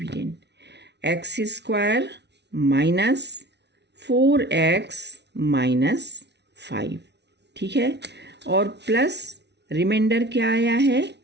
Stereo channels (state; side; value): late; left; 0.50 ms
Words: x square minus 4x minus 5। ठीक है, और प्लस रिमाइंडर क्या आया है,